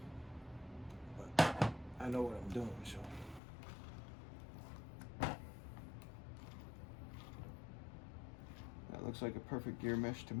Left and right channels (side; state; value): right; drops out; at 3.4 s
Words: I know what I'm doing, so. That looks like a perfect gear mesh to